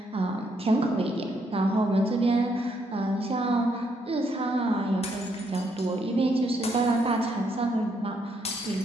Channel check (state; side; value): normal; both; correlation 0.74